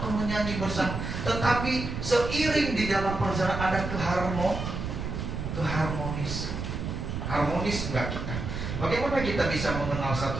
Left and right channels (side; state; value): right; noise; rumble, 5 dB below the sound